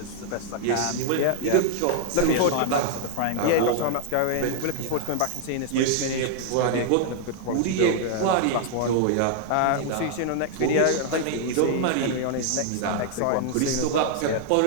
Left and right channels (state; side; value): different; both; correlation 0.00